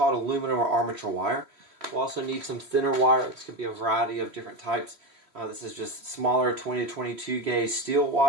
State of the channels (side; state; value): left; late; 3.0 ms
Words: aluminum or armature wire. We'll also need some thinner wire. This could be a variety of different types. This is just smaller 20 to 22 gauge steel